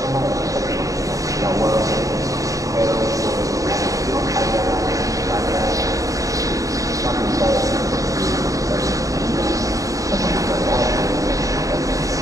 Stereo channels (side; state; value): left; late; 0.16 ms